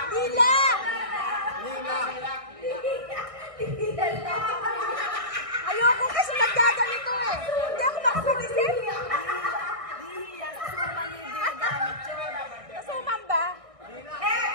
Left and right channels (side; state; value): left; late; 1.6 ms